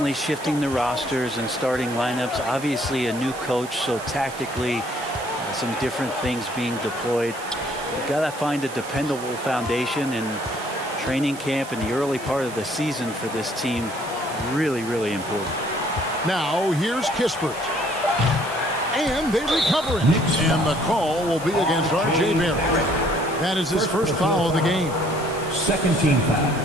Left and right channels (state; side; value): noise; right; hiss, 16 dB below the sound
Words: shifting the rosters and starting lineups. Obviously a new coach, so tactically some different things being deployed. You've got to find a dependable foundation, and training camp in the early part of the season for this team really, really important. Now here's Kispert. And they recover it. And the call will be against RJ Barrett. That is his first foul of the game. Second team foul.